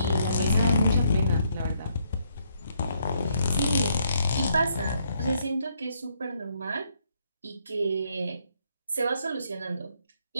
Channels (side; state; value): both; inverted; correlation -0.72